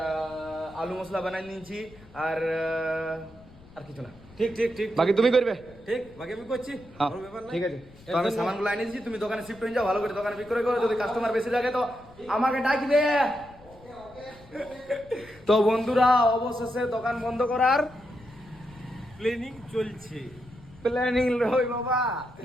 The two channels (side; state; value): left; noise; rumble, 23 dB below the sound